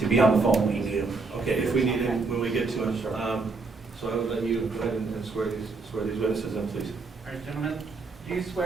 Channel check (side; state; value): left; quieter; 4.0 dB